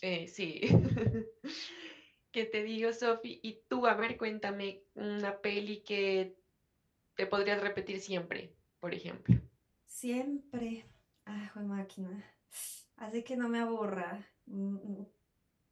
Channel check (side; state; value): both; identical; correlation 1.00